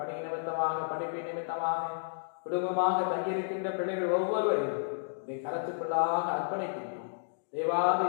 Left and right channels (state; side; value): silent; right; digital silence